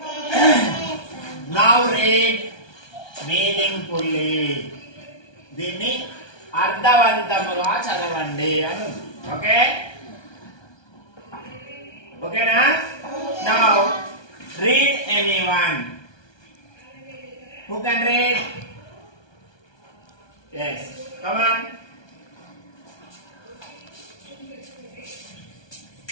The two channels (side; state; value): right; late; 1.2 ms